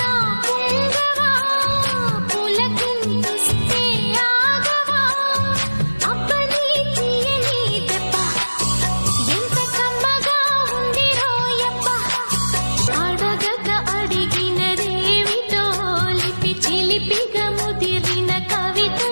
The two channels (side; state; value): both; inverted; correlation -1.00